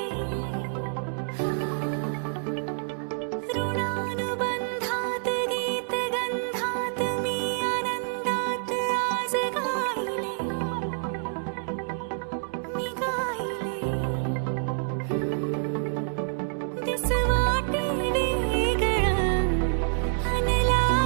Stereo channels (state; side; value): silent; left; digital silence